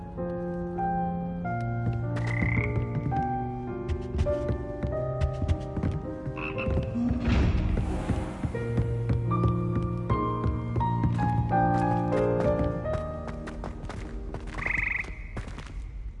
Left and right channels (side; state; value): both; identical; correlation 1.00